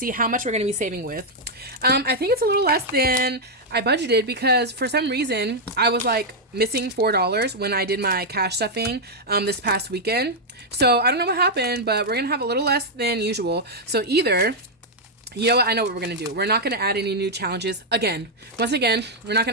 how much we're going to be saving with. I think it's a little less than I budgeted because for some reason I was like missing $4 when I did my cash stuffing this past weekend. So I don't know what happened, but we're going to have a little less than usual. So either, you know what? I know what we're going to do. We're not going to add any new challenges again. Once again, we're not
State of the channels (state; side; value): normal; both; correlation -0.02